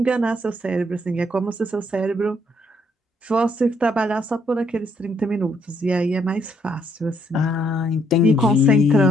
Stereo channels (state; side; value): normal; both; correlation 0.71